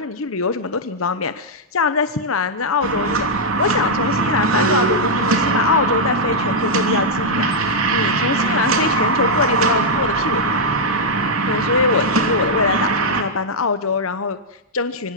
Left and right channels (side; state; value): both; normal; correlation -0.05